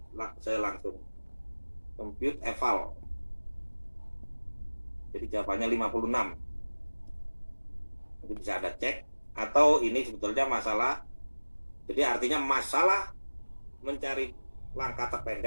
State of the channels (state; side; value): inverted; both; correlation -1.00